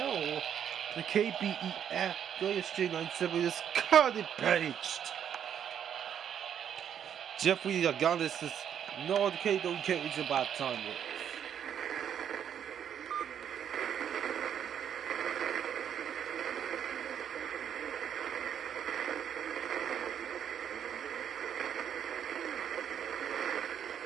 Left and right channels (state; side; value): quieter; left; 8.9 dB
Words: The KBEF Straight 97 is cut it paged. Jeffrey Agonis is no the K don't care it's about time.